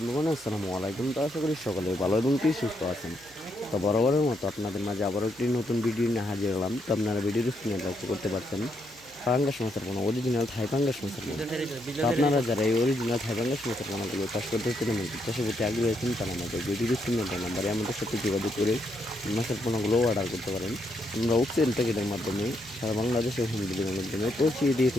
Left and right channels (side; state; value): right; noise; hum, 28 dB below the sound